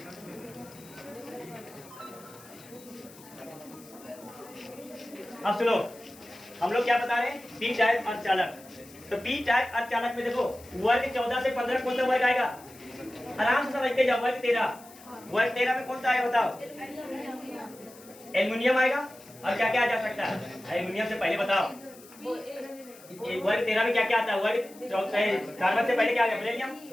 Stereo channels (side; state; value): left; noise; hiss, 21 dB below the sound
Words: अब सुनो, हम लोग क्या बता रहे हैं? पी टाइप अर्धचालक। तो पी टाइप अर्धचालक में देखो वर्ग 14 से 15 कौन सा वर्ग आएगा? आराम से समझते जाओ। वर्ग 13 में कौन सा आएगा बताओ? एल्युमिनियम आएगा। और क्या क्या आ जा सकता है? एल्युमिनियम से पहले बताओ, वर्ग 13 में क्या क्या आता है? वर्ग 14 कार्बन से पहले क्या आ गया? बेरिलियम।